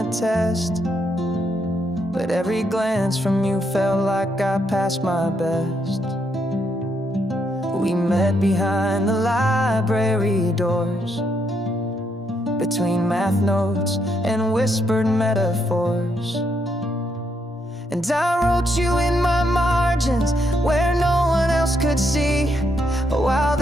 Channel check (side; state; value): both; normal; correlation 0.77